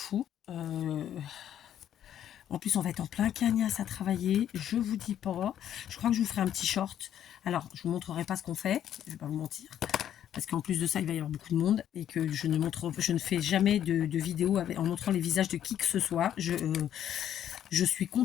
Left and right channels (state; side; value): quieter; right; 10.5 dB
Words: En plus, on va être en plein cagnasse à travailler. Je vous dis pas. Je crois que je vous ferai un petit short. Alors, je vous montrerai pas ce qu'on fait. Je vais pas vous mentir. Parce qu'en plus de ça, il va y avoir beaucoup de monde et que je ne fais jamais de vidéo en montrant les visages de qui que ce soit. Je suis